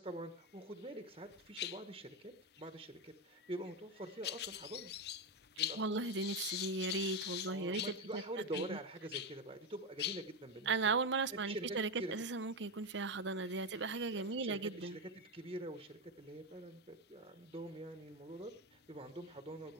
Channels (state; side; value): normal; both; correlation 0.11